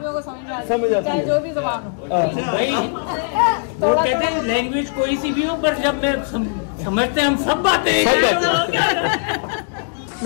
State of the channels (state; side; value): silent; right; digital silence